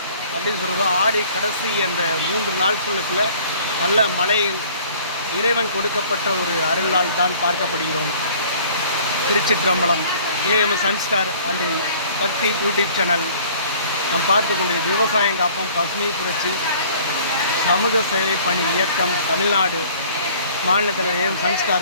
அப்படின்னு சொல்கிறது, ஆடி கடைசி என்ற 3 நாட்களுக்குள்ள நல்ல மழையில் இறைவன் கொடுக்கப்பட்ட ஒரு அருளால் தான் பார்க்கப்படுகிறோம். திருச்சிற்றம்பலம் ஏஎம்எஸ் சன்ஸ்டார் அண்ட் பக்தி யூடியூப் சேனல் நாம் பார்த்து கொண்டிருக்க விவசாயம் காப்போம் பசுமை புரட்சி சமூக சேவை பணி இயக்கம் தமிழ்நாடு மாநில தலைவர் ஏஎம்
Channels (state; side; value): inverted; both; correlation -0.52